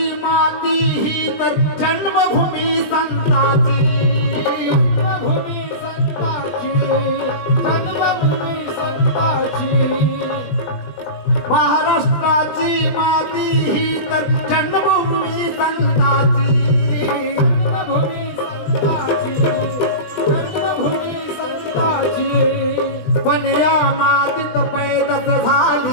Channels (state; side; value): late; right; 20 ms